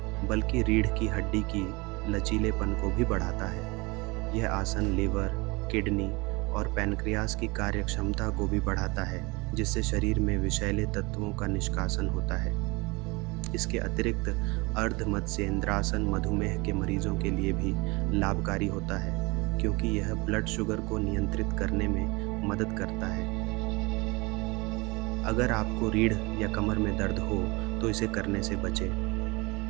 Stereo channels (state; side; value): quieter; left; 25.6 dB